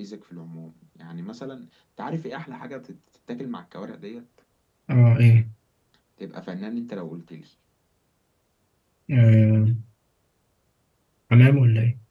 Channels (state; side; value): identical; both; correlation 1.00